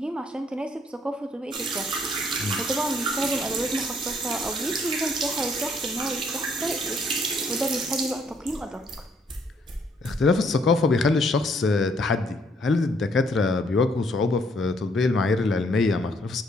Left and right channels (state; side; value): normal; both; correlation 0.67